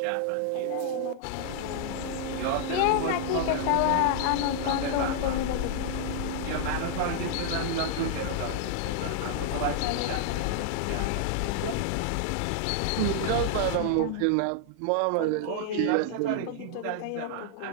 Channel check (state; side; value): different; both; correlation -0.01